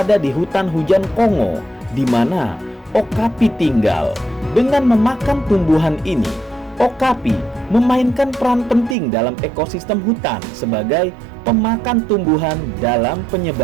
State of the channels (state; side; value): drops out; left; at 9.0 s